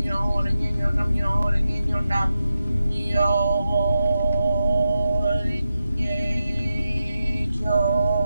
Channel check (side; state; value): both; inverted; correlation -0.90